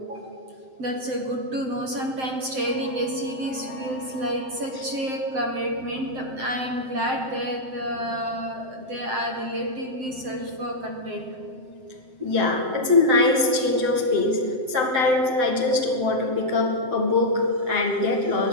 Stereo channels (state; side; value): late; left; 7.7 ms